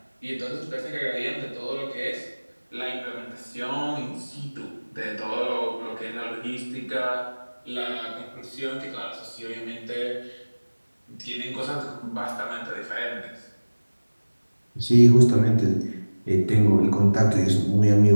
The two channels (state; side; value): inverted; both; correlation -1.00